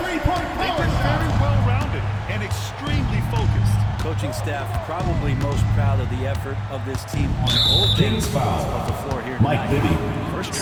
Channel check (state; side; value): identical; both; correlation 1.00